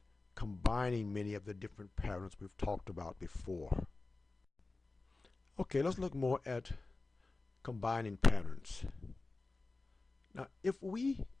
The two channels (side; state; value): right; quieter; 3.4 dB